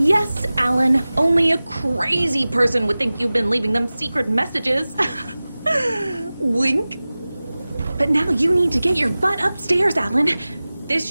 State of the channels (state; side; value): inverted; both; correlation -0.98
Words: Alan, only a crazy person would think you've been leaving them secret messages. Wink. But now you need to get your butt upstairs, Alan. This